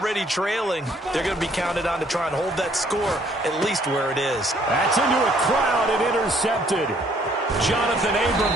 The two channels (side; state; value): both; normal; correlation 0.63